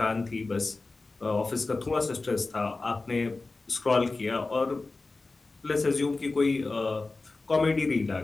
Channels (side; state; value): right; quieter; 3.5 dB